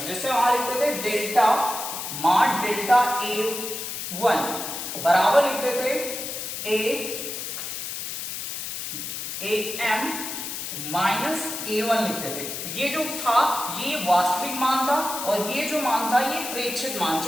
जैसे वहां लिखते थे डेल्टा मान डेल्टा A1 बराबर लिखते थे AM माइनस A1 लिखते थे। ये जो था ये वास्तविक मान था और ये जो मान था ये प्रेक्षित मान,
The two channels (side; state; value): left; noise; hiss, 6 dB below the sound